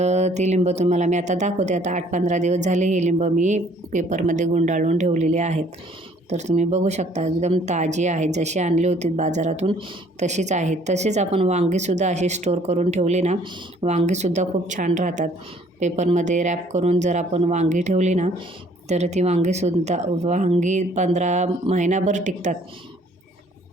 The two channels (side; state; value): both; normal; correlation 0.59